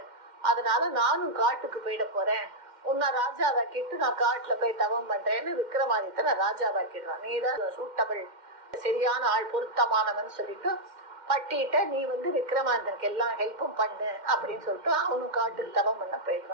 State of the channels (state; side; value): late; left; 2.1 ms